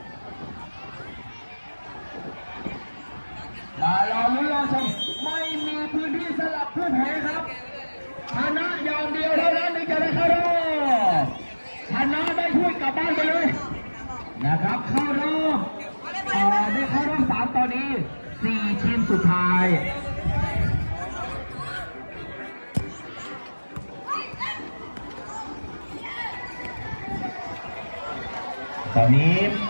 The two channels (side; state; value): both; inverted; correlation -1.00